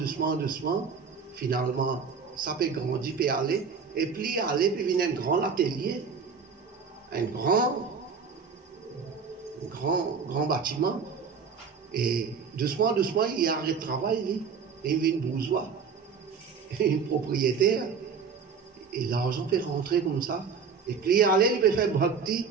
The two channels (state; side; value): quieter; left; 5.8 dB